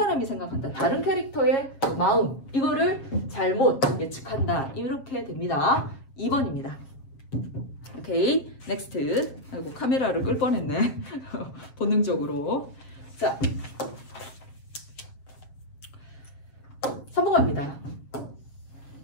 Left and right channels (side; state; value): right; late; 7.6 ms